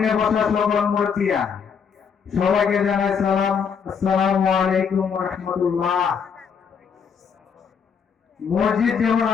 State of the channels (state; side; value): quieter; right; 6.6 dB